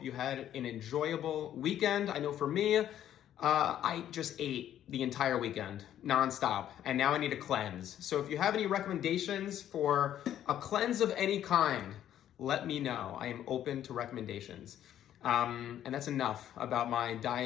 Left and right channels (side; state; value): right; quieter; 11.1 dB